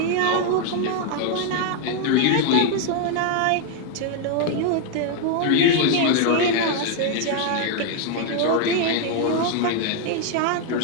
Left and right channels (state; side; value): different; both; correlation 0.01